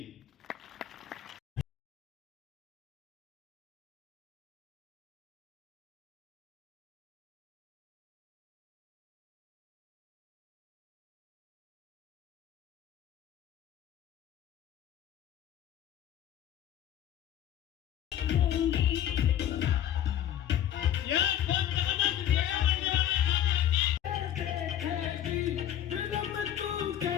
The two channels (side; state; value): right; quieter; 10.9 dB